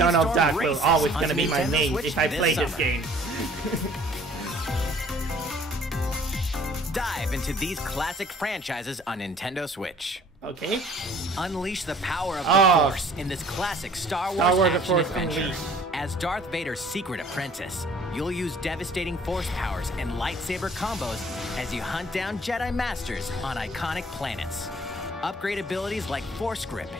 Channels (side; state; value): both; normal; correlation 0.55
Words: Speedstorm Duck will races always on gonna be my Nintendo main Switch if I this play this summer. game. Dive into these classic franchises on Nintendo Switch. Okay. Unleash the power of the Force in this classic Star Wars action Force adventure. Unleashed. As Darth Vader's secret apprentice, you'll use devastating Force powers and lightsaber combos as you hunt down Jedi Masters on iconic planets. Upgrade abilities like Force Grip